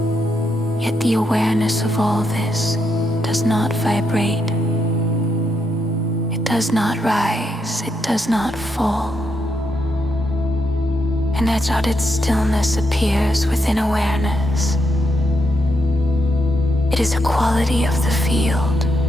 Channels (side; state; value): both; normal; correlation 0.80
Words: Yet the awareness of all this does not vibrate. It does not rise. It does not fall. An uncharted stillness appears within awareness. It is a quality of the field,